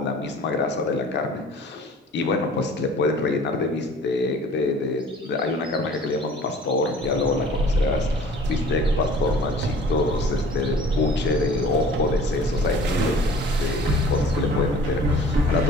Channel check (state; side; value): normal; both; correlation 0.48